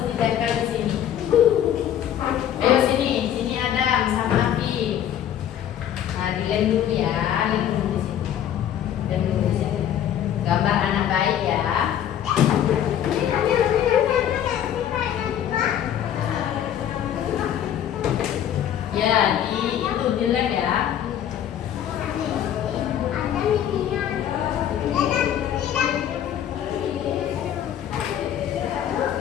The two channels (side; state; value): right; quieter; 10.3 dB